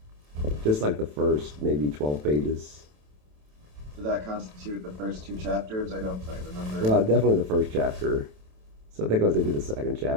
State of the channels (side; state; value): left; late; 27 ms